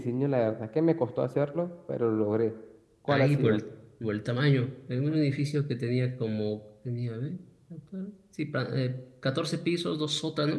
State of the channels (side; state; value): both; identical; correlation 1.00